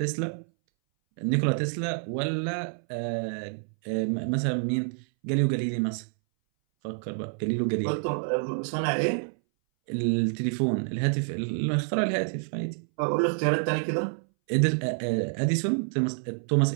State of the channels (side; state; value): left; silent; 60 dB below the other